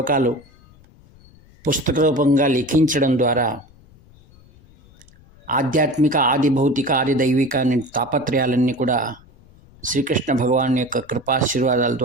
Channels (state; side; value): noise; left; rumble, 26 dB below the sound